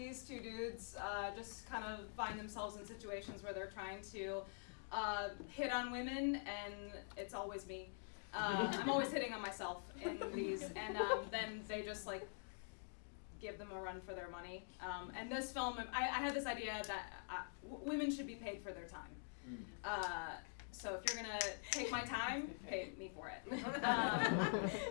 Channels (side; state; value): right; silent; digital silence